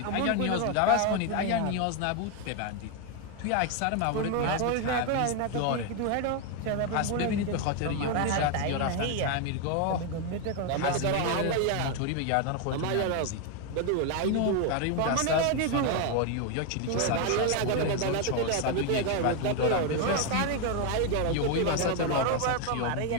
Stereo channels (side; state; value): both; different; correlation 0.01